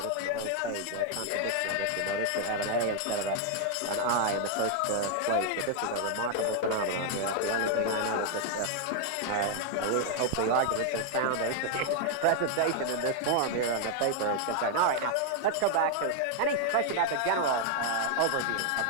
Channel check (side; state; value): both; different; correlation 0.00